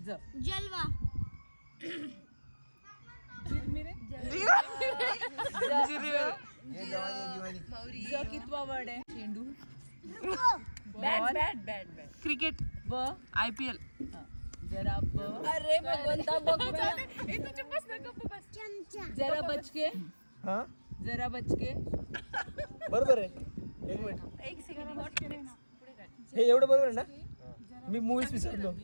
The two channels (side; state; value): both; inverted; correlation -1.00